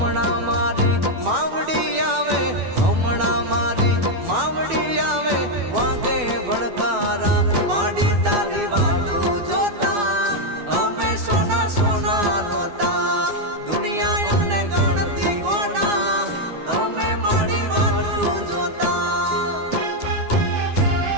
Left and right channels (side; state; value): left; late; 12 ms